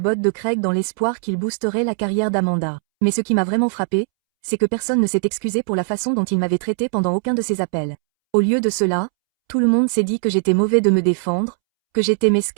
de Craig dans l'espoir qu'il boosterait la carrière d'Amanda. Mais ce qui m'a vraiment frappé, c'est que personne ne s'est excusé pour la façon dont il m'avait traité pendant aucun de ses appels. Au lieu de cela, tout le monde s'est dit que j'étais mauvais de me défendre, que j'étais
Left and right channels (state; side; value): silent; left; 66 dB below the other